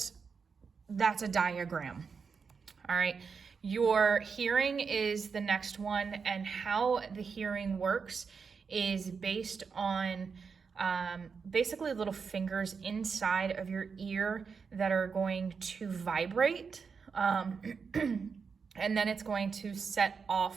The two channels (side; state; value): left; quieter; 5.6 dB